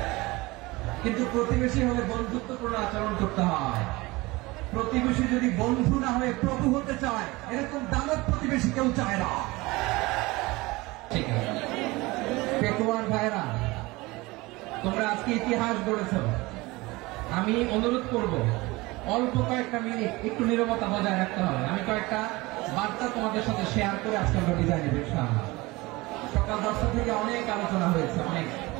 কিন্তু প্রতিবেশী হলে বন্ধুত্বপূর্ণ আচরণ করতে হয়। প্রতিবেশী যদি বন্ধু না হয়ে প্রভু হতে চায়, এরকম দানব প্রতিবেশী কেউ চায় না। ঠিক আছে পেকুয়ার ভাইরা, তোমরা আজকে ইতিহাস গড়েছ। আমি অনুরোধ করব অল্প কয়েকটা মিনিট একটু নীরবতা বজায় রাখতে হবে। আমি কয়েকটা বার্তা তোমাদের সাথে শেয়ার করে আজকে আমরা বিদায় নেব ইনশাআল্লাহ। সকাল 10টা থেকে অনেক আলোচনা হয়েছে, অনেক,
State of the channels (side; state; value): left; quieter; 22.1 dB